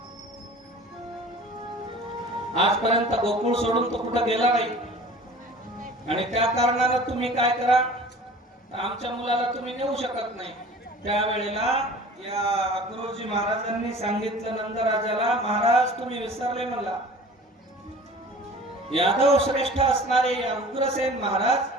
आजपर्यंत गोकुळ सोडून तो कुठं गेला नाही आणि त्या कारणानं तुम्ही काय करा, आमच्या मुलाला तुम्ही नेऊ शकत नाही. त्यावेळेला या अक्रूरजी महाराजांनी सांगितलं नंदराजाला, महाराज तुम्ही विसरले मला, यादव श्रेष्ठ असणारे या उग्रसेन महाराज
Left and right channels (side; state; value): both; normal; correlation 0.44